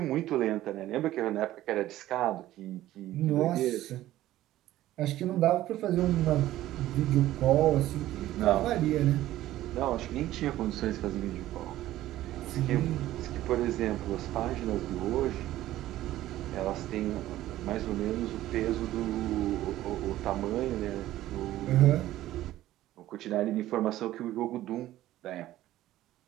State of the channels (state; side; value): quieter; left; 14.6 dB